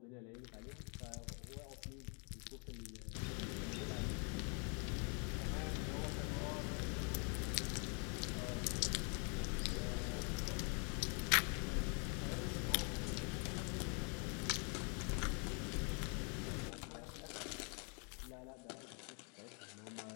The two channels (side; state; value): right; quieter; 37.0 dB